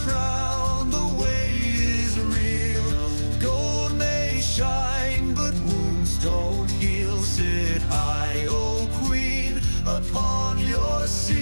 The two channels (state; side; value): inverted; both; correlation -1.00